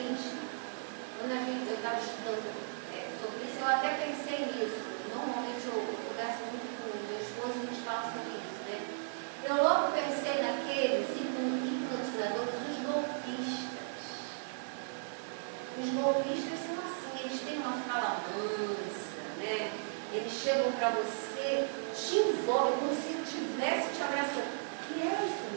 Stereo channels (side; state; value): left; silent; digital silence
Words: quando eu estava estudando sobre isso, eu até pensei nisso. Normalmente eu converso muito com o meu esposo e a gente fala sobre isso, né? Eu logo pensei naqueles hipnotizadores, os golpistas. Os golpistas são assim, eles têm uma fala mansa, né? Eles chegam para você, te envolvem como se estivesse te abraçando. E é isso